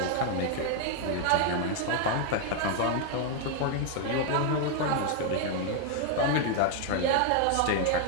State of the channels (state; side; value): different; both; correlation 0.00